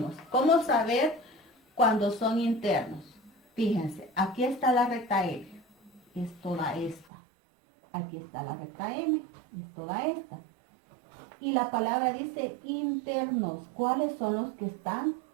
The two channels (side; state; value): left; drops out; at 7.1 s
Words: cómo saber cuando son internos. Fíjense, aquí está la recta L, es toda esta. Aquí está la recta M, es toda esta. Y la palabra dice internos. ¿Cuáles son los que están